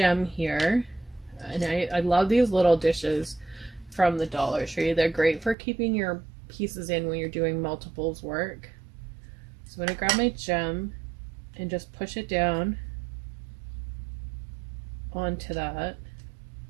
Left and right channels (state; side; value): drops out; left; at 5.6 s